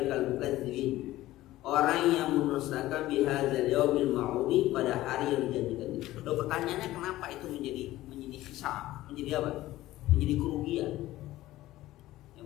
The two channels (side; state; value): right; quieter; 16.0 dB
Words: mukadzibin, orang yang mendustakan bihadzal yaumil ma'udi, pada hari yang dijanjikan itu. Loh, pertanyaannya kenapa itu menjadi hisab, menjadi apa? Menjadi kerugian. Yang